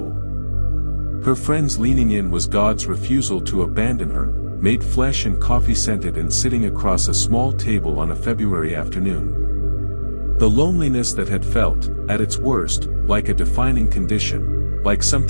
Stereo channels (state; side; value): inverted; both; correlation -1.00